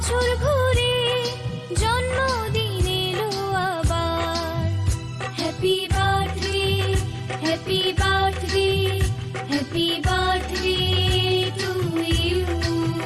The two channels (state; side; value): identical; both; correlation 1.00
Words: ঘুরে জন্মদিন এলো আবার। Happy birthday, happy birthday, happy birthday to you.